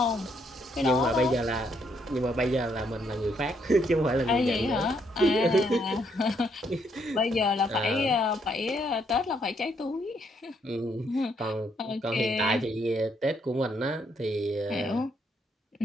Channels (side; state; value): both; normal; correlation 0.73